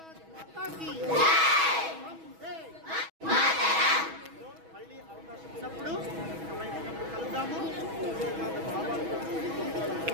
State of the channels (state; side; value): late; left; 6.2 ms